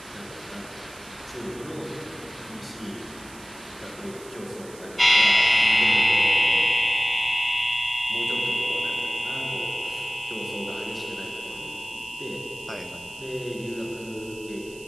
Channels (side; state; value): right; noise; hiss, 20 dB below the sound